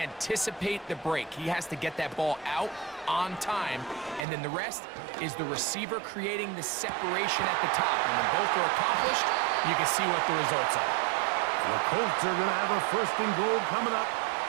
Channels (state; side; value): drops out; left; at 4.2 s